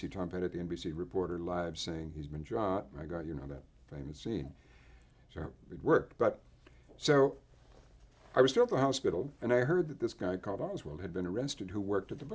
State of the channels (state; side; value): identical; both; correlation 1.00